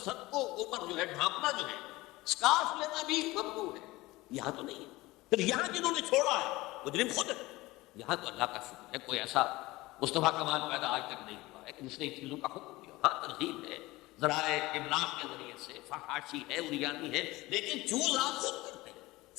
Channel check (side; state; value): right; quieter; 19.9 dB